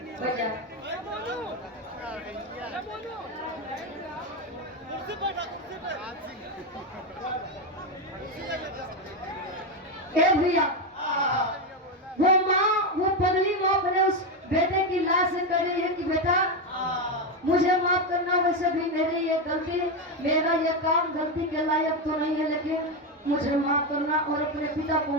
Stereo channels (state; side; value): normal; both; correlation 0.10